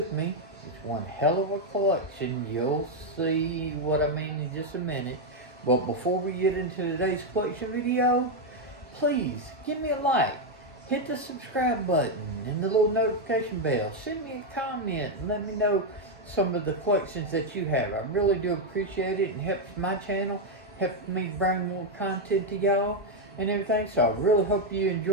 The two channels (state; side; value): normal; both; correlation 0.03